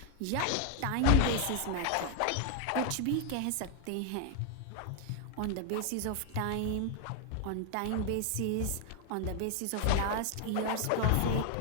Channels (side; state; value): both; different; correlation 0.00